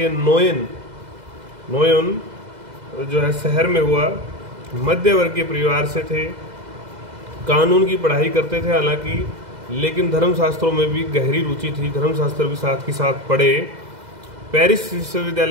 नोयन जो है शहर में हुआ। मध्य वर्गीय परिवार से थे, कानून की पढ़ाई करते थे हालांकि, लेकिन धर्मशास्त्रों में भी गहरी रुचि थी। धर्मशास्त्र भी साथ के साथ पढ़े। पेरिस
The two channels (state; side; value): late; left; 2.0 ms